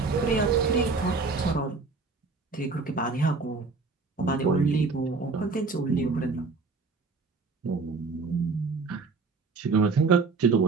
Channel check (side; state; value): left; quieter; 4.3 dB